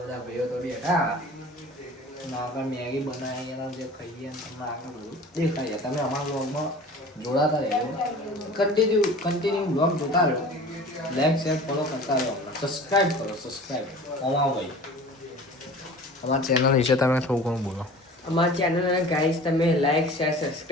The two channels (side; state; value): both; normal; correlation 0.41